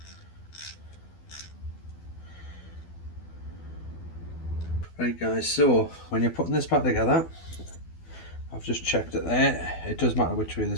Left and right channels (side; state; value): right; late; 12 ms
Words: Right guys, so when you're putting this back together, I've just checked it there. It does matter which way